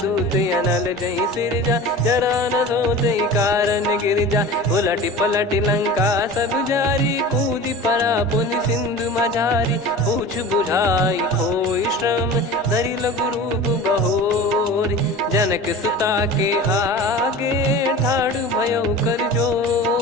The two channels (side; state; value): both; normal; correlation 0.35